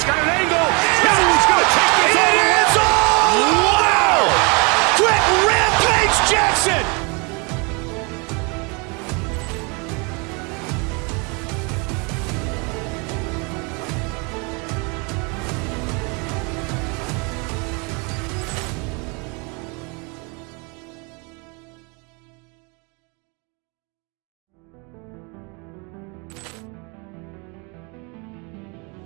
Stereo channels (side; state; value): left; quieter; 31.1 dB